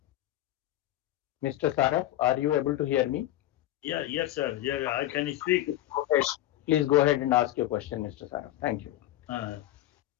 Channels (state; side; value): quieter; right; 14.4 dB